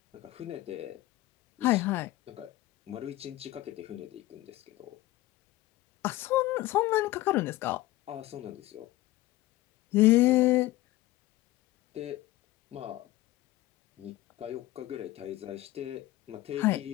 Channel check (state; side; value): quieter; right; 17.0 dB